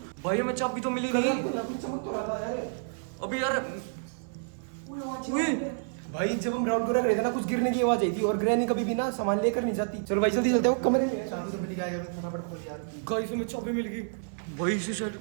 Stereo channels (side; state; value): left; silent; 58 dB below the other